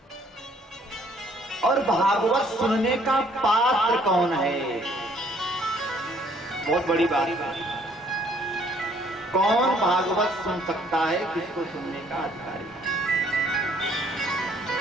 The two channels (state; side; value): normal; both; correlation 0.62